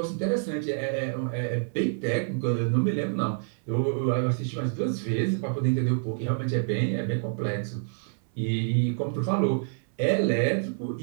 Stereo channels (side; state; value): left; silent; 58 dB below the other